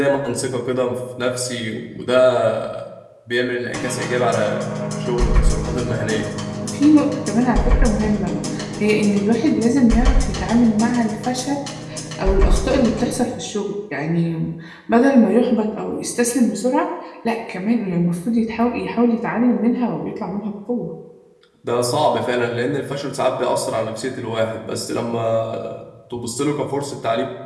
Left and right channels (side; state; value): both; identical; correlation 1.00